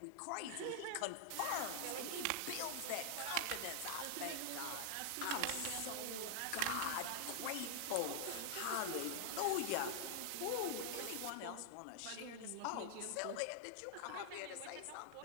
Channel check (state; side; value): different; both; correlation -0.01